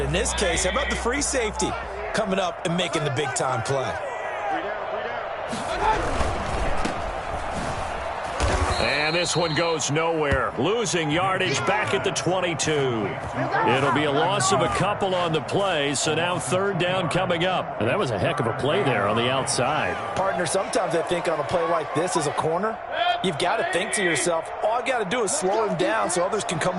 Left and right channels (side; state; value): both; identical; correlation 1.00